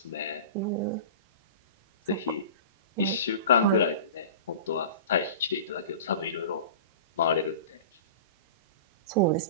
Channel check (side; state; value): both; inverted; correlation -0.36